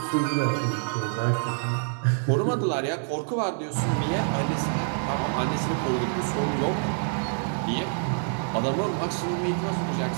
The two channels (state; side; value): silent; left; digital silence